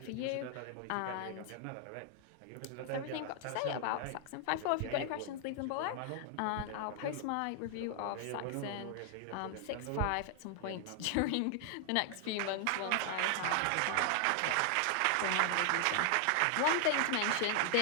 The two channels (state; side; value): different; both; correlation 0.00